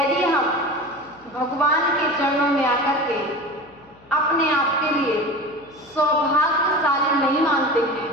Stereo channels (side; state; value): left; noise; hum, 28 dB below the sound